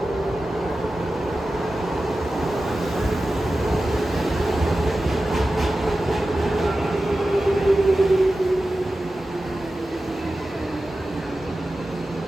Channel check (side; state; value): both; normal; correlation 0.94